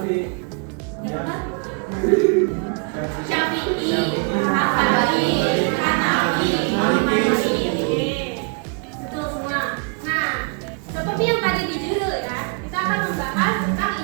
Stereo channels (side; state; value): left; quieter; 37.5 dB